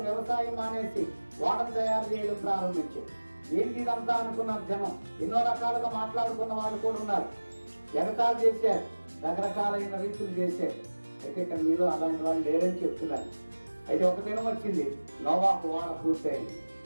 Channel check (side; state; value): both; inverted; correlation -1.00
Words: వ్యవసాయం మానేసి వాడను తయారు చేయడం ప్రారంభించాడు. ఏంటి ఇదంతా అనుకున్నారు జనం. ఎన్నో రకాలుగా మాట్లాడుకున్న వాళ్ళు కూడా ఉన్నారు. ఎగతాలు చేశారు, రకరకాలైన రీతులు చేశారు. అయితే ఇక్కడ మీలో అలాంటి వాళ్ళు లేరని చెప్తున్నారు. అయితే ఒక దినం వచ్చింది, నోవాహు వాడ పూర్తయింది.